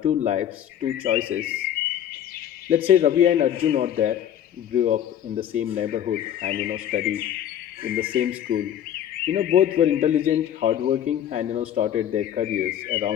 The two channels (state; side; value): quieter; right; 10.3 dB